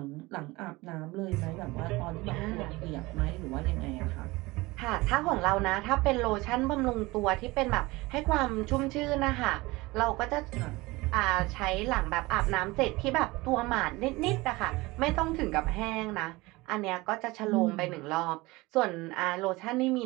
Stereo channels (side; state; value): left; quieter; 21.7 dB